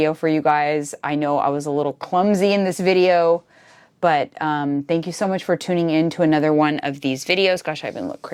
for you guys. I know I was a little clumsy in this video, but thank you so much for tuning in to another one of these videos. Gosh, I even look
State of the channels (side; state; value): both; identical; correlation 1.00